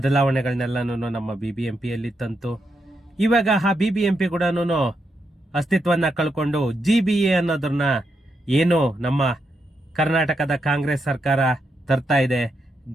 ನಮ್ಮ BBMPಯಲ್ಲಿ ತಂತು. ಇವಾಗ ಆ BBMP ಕೂಡ ಅಸ್ತಿತ್ವವನ್ನು ಕಳ್ಕೊಂಡು GBA ಅನ್ನೋದನ್ನ ಏನು ನಮ್ಮ ಕರ್ನಾಟಕದ ಕಾಂಗ್ರೆಸ್ ಸರ್ಕಾರ ತರ್ತಾ ಇದೆ,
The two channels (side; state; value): both; normal; correlation 0.83